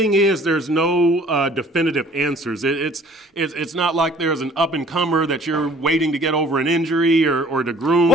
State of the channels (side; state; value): both; normal; correlation 0.54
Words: is, there's no definitive answers. It's not like there's an up-and-comer that you're waiting to get over an injury or to groom.